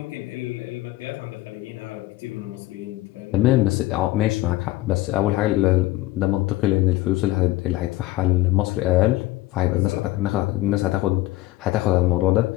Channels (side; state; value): right; quieter; 17.8 dB